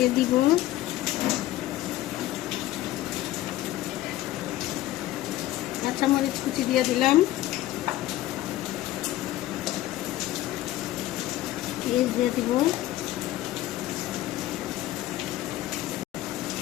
দিব, কাঁচামরিচ কুচি দিয়ে দিলাম, পেঁয়াজ দিয়ে দিব,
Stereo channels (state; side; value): quieter; right; 15.1 dB